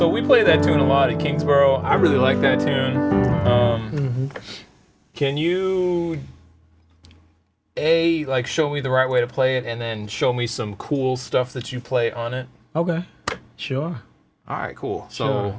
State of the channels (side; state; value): both; identical; correlation 1.00